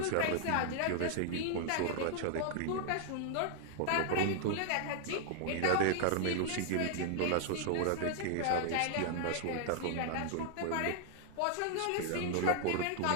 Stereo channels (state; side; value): different; both; correlation 0.00